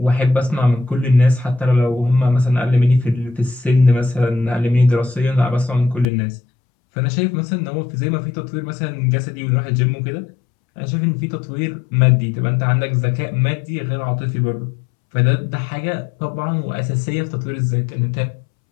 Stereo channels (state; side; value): drops out; right; at 6.1 s